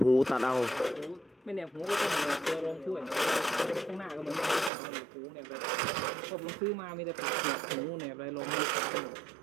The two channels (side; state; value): left; drops out; at 4.7 s